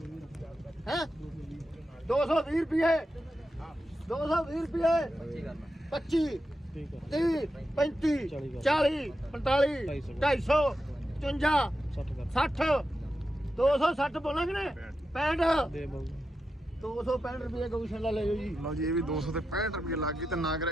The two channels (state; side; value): normal; both; correlation 0.88